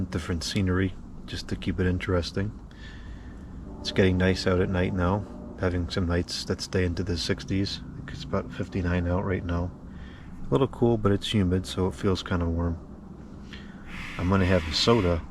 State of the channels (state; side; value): identical; both; correlation 1.00